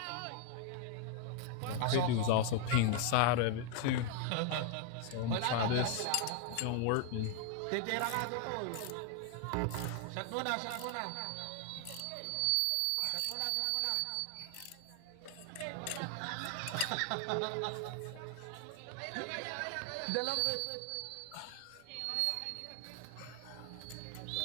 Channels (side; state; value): both; different; correlation 0.00